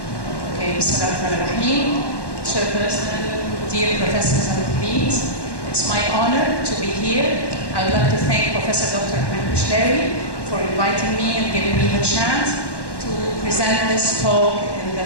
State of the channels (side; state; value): right; late; 1.1 ms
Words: Bismillahirrahmanirrahim. Chairperson, dear professors and colleagues, it's my honor to be here. I would like to thank Professor Dr. Ahmed for inviting me and giving me the chance to present this talk in